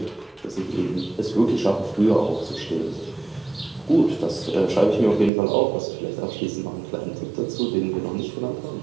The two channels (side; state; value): left; drops out; at 5.3 s